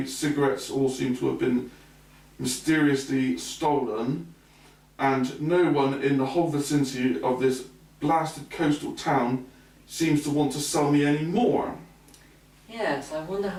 cigarettes all seem to have been mysteriously stolen, and no one in the whole vicinity of this blasted coastal town seems to want to sell me any more. Yes, I wonder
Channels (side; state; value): both; identical; correlation 1.00